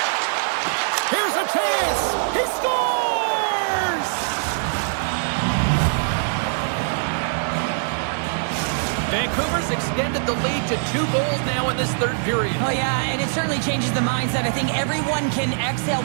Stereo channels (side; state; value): left; silent; digital silence